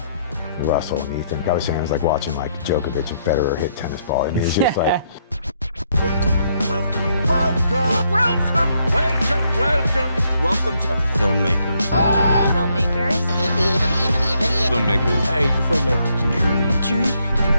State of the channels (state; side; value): inverted; both; correlation -0.74